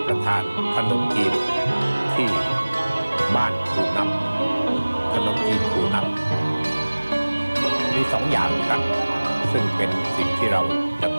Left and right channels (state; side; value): inverted; both; correlation -1.00